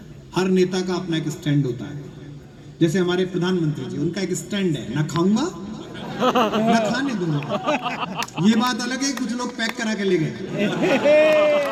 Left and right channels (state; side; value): identical; both; correlation 1.00